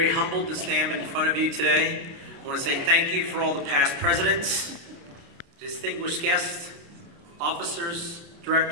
humbled to stand in front of you today. I want to say thank you for all the past presidents, distinguished guests, officers,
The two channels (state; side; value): late; left; 29 ms